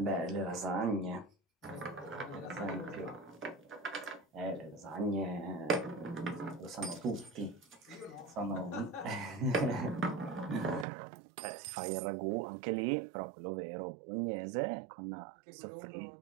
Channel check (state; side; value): drops out; left; at 10.9 s